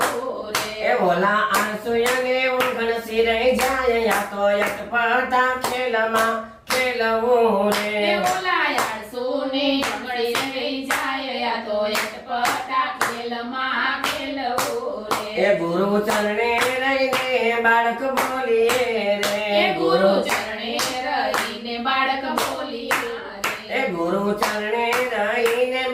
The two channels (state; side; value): identical; both; correlation 1.00